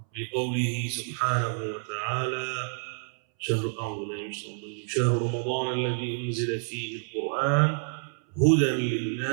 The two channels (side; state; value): left; silent; 59 dB below the other